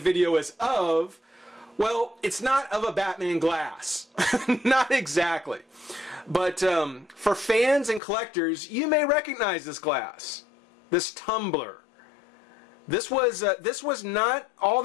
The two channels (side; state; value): right; drops out; at 8.0 s